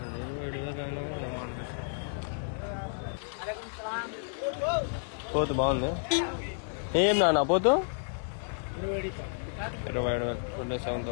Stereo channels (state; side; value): silent; right; digital silence